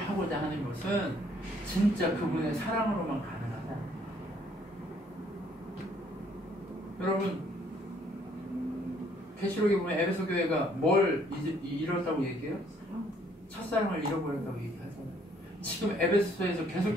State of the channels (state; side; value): normal; both; correlation 0.64